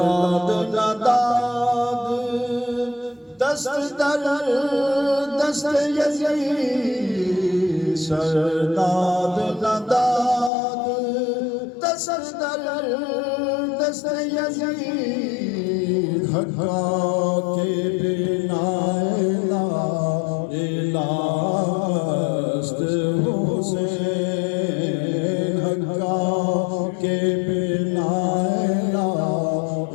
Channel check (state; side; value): drops out; right; at 10.5 s